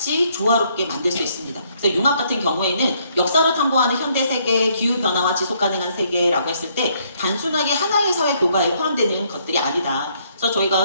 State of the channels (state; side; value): inverted; both; correlation -0.69